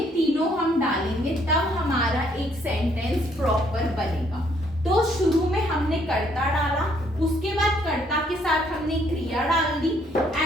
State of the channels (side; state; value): both; normal; correlation 0.67